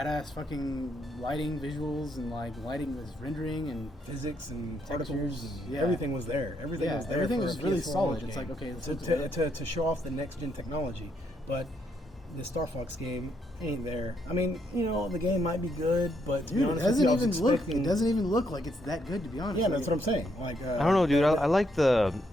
fucking lighting visuals, and like lighting was rendering and physics and particles. And, everything was there. Everything was there. Everything was really solid. It's like, okay, to show off the next gen technology, but the Star Fox game ain't there. I mean, the game might be good, but to be honest, it doesn't even look like it's that good, to be honest. Yeah, that's what I'm saying. Like, I don't know, dude. I like the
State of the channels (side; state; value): both; normal; correlation 0.75